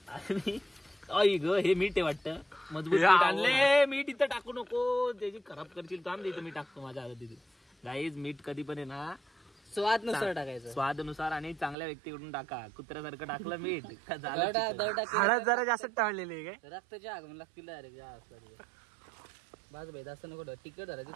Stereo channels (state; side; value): drops out; left; at 11.8 s